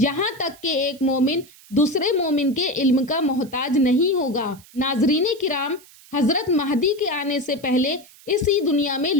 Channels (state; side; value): noise; right; hiss, 24 dB below the sound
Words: تک کہ ایک مومن دوسرے مومن کے علم کا محتاج نہیں ہوگا۔ ناظرین کرام، حضرت مہدی کے آنے سے پہلے اسی دنیا میں